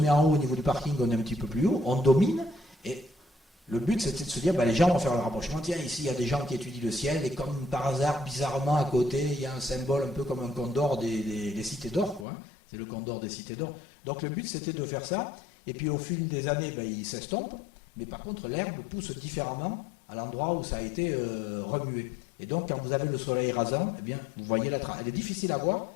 en haut au niveau du parking, on est un petit peu plus haut, on domine, et le but c'était de se dire, les gens vont faire le rapprochement, tiens ici il y a des gens qui étudient le ciel, et comme par hasard, bizarrement à côté, il y a un symbole un peu comme un condor des cités d'or, quoi, hein. C'est le condor des cités d'or. Donc le but c'était de faire ça, et puis au fil des années, il s'estompe, mais par contre l'herbe pousse différemment à l'endroit où ça a été remué. Et donc, quand vous avez le soleil rasant, eh bien, vous voyez la trace. Elle est difficile à voir,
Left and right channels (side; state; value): right; drops out; at 12.2 s